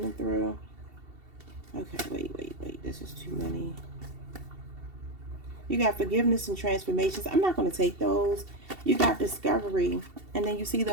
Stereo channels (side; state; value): left; late; 2.7 ms